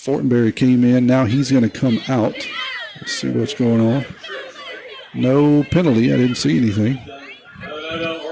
came in. Now he's going to come out. Let's see what's going on. No penalty. I didn't see anything. No.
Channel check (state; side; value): identical; both; correlation 1.00